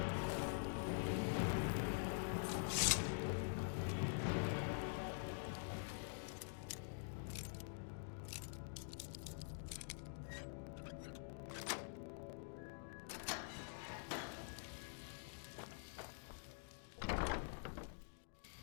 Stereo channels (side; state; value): right; silent; digital silence